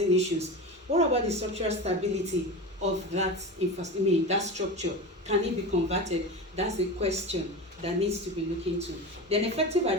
issues. What about the structural stability of that that structure? Can it be converted? That's a question that needs to be looked into. Then effective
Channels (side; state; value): both; normal; correlation 0.27